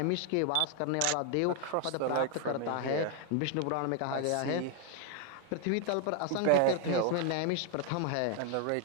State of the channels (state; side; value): different; both; correlation 0.00